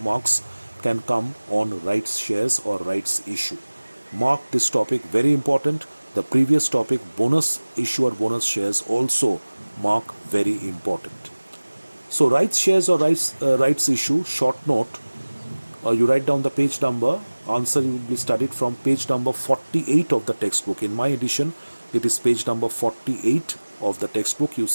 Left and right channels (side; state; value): both; inverted; correlation -1.00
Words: marks can come on rights shares or rights issue. Mark this topic very important. The previous topic, bonus issue or bonus shares, also mark very important. So rights shares or rights issue, short note, you write down the page number. Answer will be studied from page number 48 of the textbook. In my edition, it is page number 48 of the textbook. You